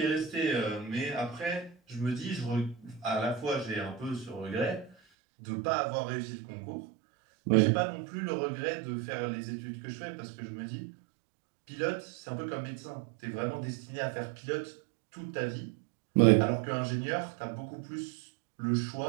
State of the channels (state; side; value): drops out; left; at 5.0 s